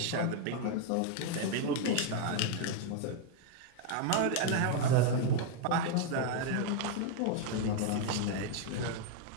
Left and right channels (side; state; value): both; different; correlation 0.00